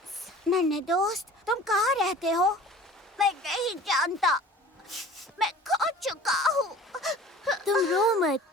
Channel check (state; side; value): normal; both; correlation 0.44